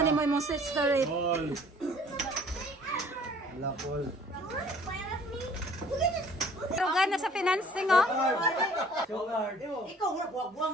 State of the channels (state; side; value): normal; both; correlation 0.54